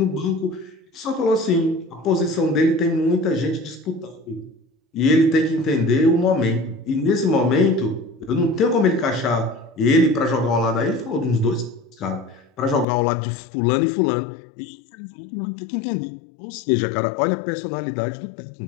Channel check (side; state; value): right; drops out; at 12.9 s